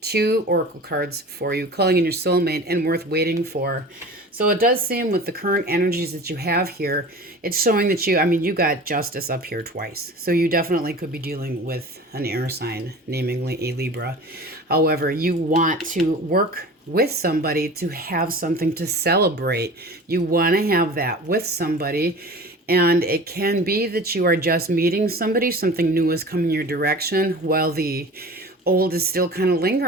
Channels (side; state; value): both; normal; correlation 0.38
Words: 2 oracle cards for you, calling in your soulmate and worth waiting for. So it does seem with the current energies that you have here, it's showing that you got Justice up here twice. So you definitely could be dealing with an air sign, namely a Libra. However, you want to work with somebody to have something to celebrate. You want to have that with somebody. And it can be that you are just meeting somebody, something new is coming your direction, while the old is still kind of